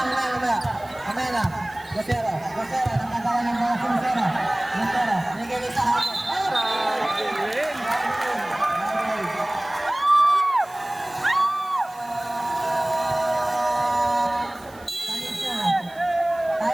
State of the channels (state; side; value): noise; right; hiss, 25 dB below the sound